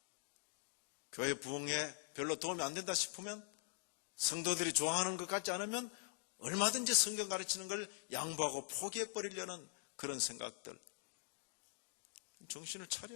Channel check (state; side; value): silent; right; digital silence